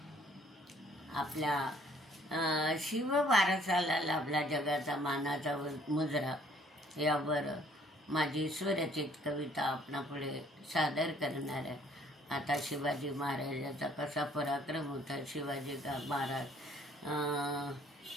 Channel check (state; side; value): normal; both; correlation 0.60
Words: आपल्या शिव वारसाला लाभला जगाचा मानाचा मुजरा यावर माझी स्वरचित कविता आपणापुढे सादर करणार आहे। आता शिवाजी महाराजाचा कसा पराक्रम होता। शिवाजी महाराज